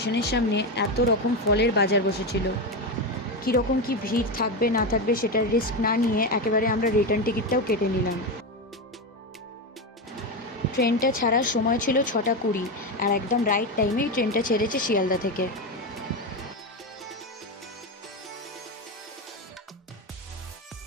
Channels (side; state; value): both; normal; correlation 0.14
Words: সামনে এত রকম ফলের বাজার বসেছিল। কীরকম কি ভিড় থাকবে না থাকবে সেটার রিস্ক না নিয়ে একেবারে আমরা রিটার্ন টিকিটটাও কেটে নিলাম। ট্রেনটা ছাড়ার সময় ছিল 6:20, আর একদম রাইট টাইমেই ট্রেনটা ছেড়েছে শিয়ালদা থেকে।